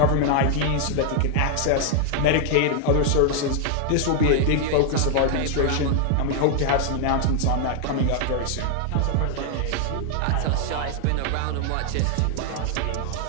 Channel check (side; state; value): both; different; correlation 0.00